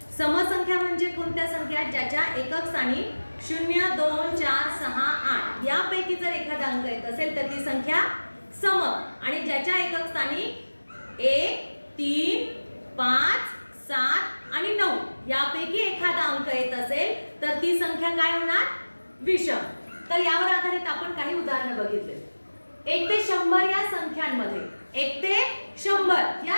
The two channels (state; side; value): inverted; both; correlation -1.00